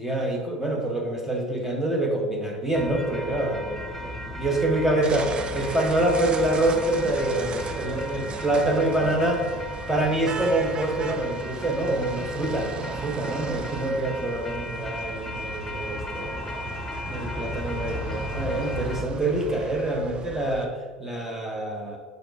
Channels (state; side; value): normal; both; correlation 0.49